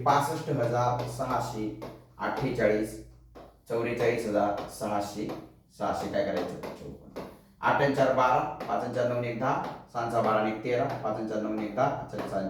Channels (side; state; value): both; identical; correlation 1.00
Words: 65,648, 44,600, 600 काय करायचं 54. 8 आणि 4 12, 5 आणि 4 9 1 10, 6 4 12 आणि 1 13, 5 आणि 4 9 1 10, 6